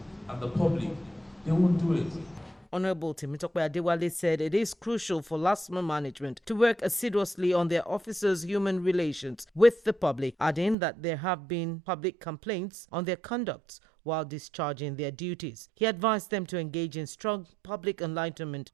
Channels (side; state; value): left; drops out; at 10.8 s